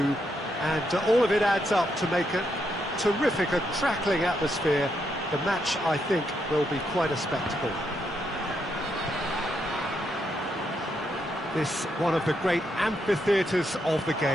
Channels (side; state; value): both; normal; correlation 0.79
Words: and all of it adds up to make a terrific, a crackling atmosphere. The match, I think, will be quite a spectacle. This one of the great amphitheatres of the